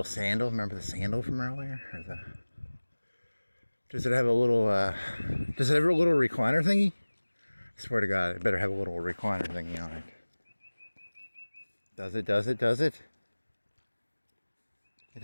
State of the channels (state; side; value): inverted; both; correlation -1.00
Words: sandal. Remember the sandal from earlier? Does it have a little recliner thingy? I swear to God, it better have a little recliner thingy on it. Does it? It